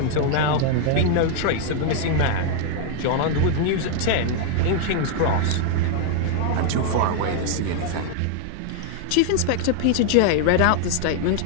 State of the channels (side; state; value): both; different; correlation 0.00